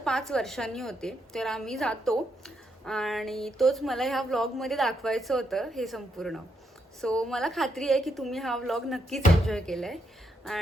वर्षांनी होते. तर आम्ही जातो आणि तोच मला ह्या व्लॉगमध्ये दाखवायचं होतं हे संपूर्ण. सो मला खात्री आहे की तुम्ही हा व्लॉग नक्कीच एन्जॉय केलाय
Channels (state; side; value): normal; both; correlation 0.79